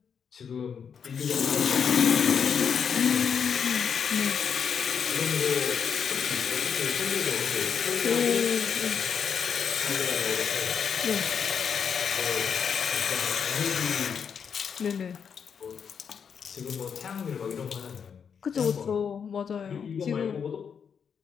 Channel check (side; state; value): right; quieter; 7.0 dB